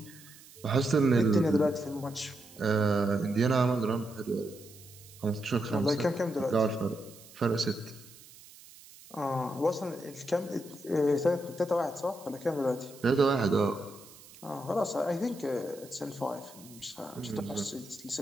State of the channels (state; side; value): noise; right; hiss, 21 dB below the sound